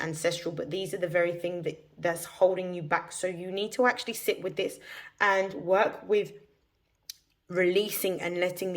but these are the very thing that's holding you back. So you need to actually sit with this and work with releasing and letting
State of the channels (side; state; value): both; identical; correlation 1.00